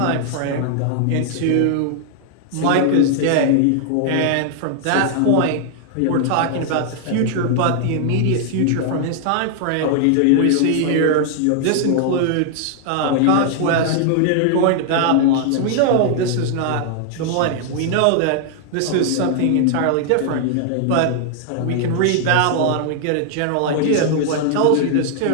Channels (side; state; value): both; different; correlation 0.00